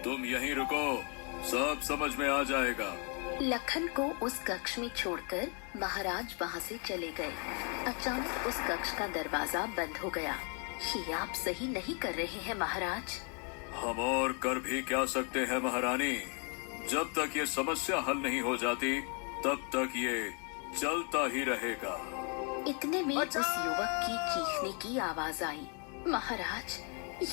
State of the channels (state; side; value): quieter; right; 37.0 dB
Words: तुम यहीं रुको, सब समझ में आ जाएगा। लखन को उस कक्ष में छोड़कर महाराज वहाँ से चले गए। अचानक उस कक्ष का दरवाजा बंद हो गया। ये आप सही नहीं कर रहे हैं महाराज। हम और कर भी क्या सकते हैं महारानी? जब तक ये समस्या हल नहीं हो जाती तब तक ये चलता ही रहेगा। इतने में उस युवक की चीखने की आवाज आई। महाराज,